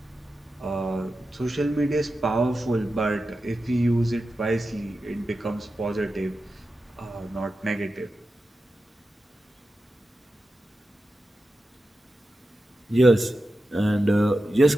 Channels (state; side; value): normal; both; correlation 0.91